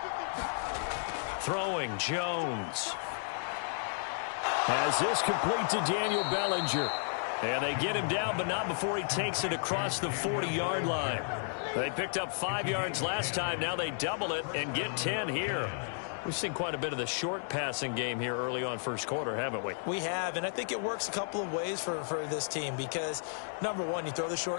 Throwing, Jones. Has this complete to Daniel Bellinger. And they get him down, but not before he takes it across the 40-yard line. They picked up 5 yards last time. Now they double it and get 10 here. We've seen quite a bit of the short passing game here early on first quarter, haven't we? We have, and I think it works a couple of ways for this team because, number one, you throw the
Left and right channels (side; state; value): right; silent; digital silence